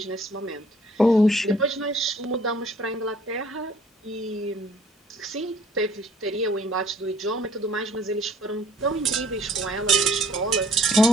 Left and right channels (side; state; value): both; normal; correlation 0.57